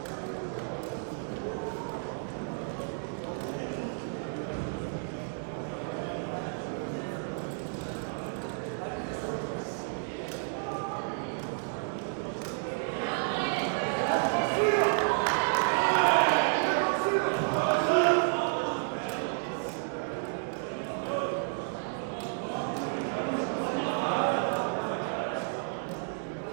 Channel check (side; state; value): left; silent; 57 dB below the other